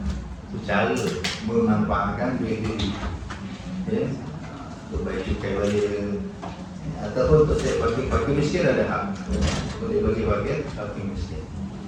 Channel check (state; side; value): identical; both; correlation 1.00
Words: Itu cara memanfaatkan duit itu. Untuk bayar cukai balik, ataupun untuk saya pakai miskin ada hak. Boleh bagi bagian pakai miskin.